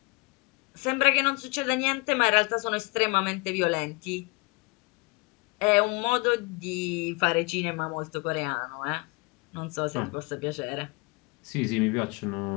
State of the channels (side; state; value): right; quieter; 28.6 dB